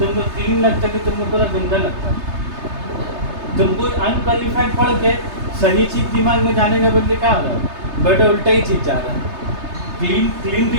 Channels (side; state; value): left; late; 3.3 ms